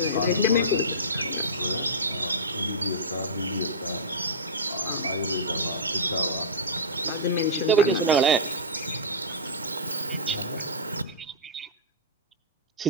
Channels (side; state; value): both; normal; correlation -0.17